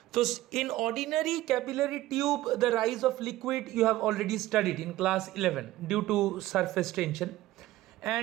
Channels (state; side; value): quieter; left; 16.0 dB